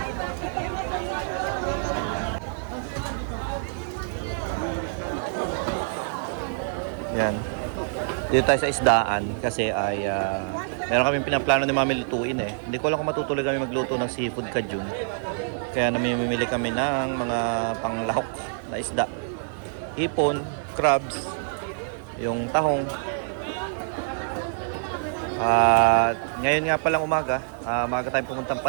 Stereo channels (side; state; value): left; silent; 60 dB below the other